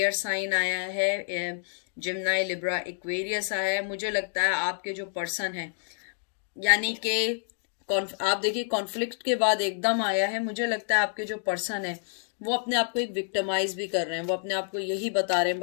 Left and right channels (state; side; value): silent; right; digital silence